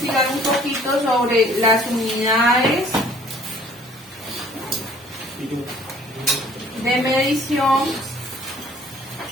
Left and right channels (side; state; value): both; normal; correlation 0.56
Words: un poquito sobre las unidades de medición